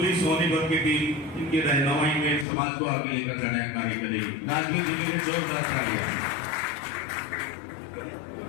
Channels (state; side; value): drops out; right; at 2.5 s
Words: सोनीपत की टीम इनकी रहनुमाई में समाज को आगे लेकर जाने का कार्य करेगी। राजवीर जी के लिए जोरदार तालियां।